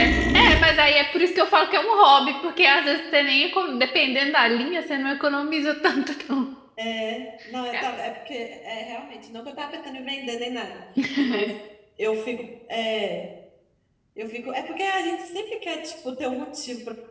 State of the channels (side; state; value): both; identical; correlation 1.00